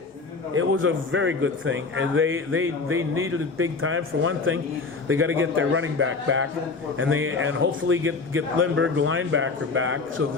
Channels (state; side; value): quieter; right; 4.2 dB